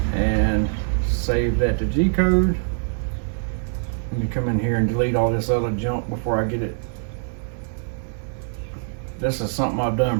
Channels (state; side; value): silent; left; digital silence